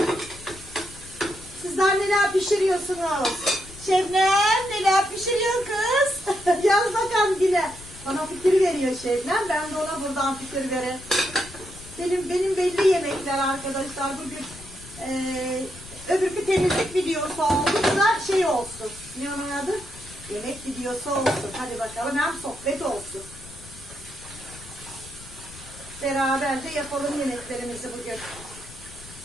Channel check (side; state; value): left; noise; rumble, 18 dB below the sound